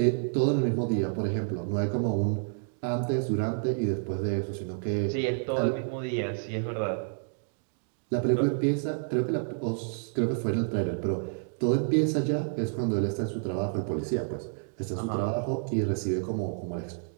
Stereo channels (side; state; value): left; silent; digital silence